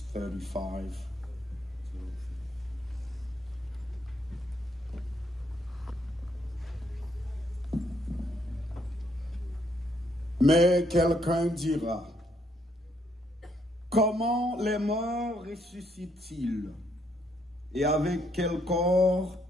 35. Mais quelqu'un dira, comment les morts ressuscitent-ils? Et avec quel corps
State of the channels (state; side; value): normal; both; correlation 0.72